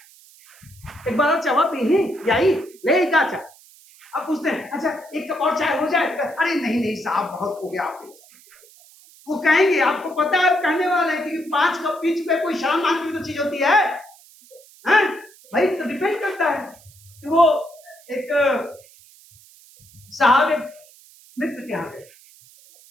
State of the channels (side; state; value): right; noise; hiss, 25 dB below the sound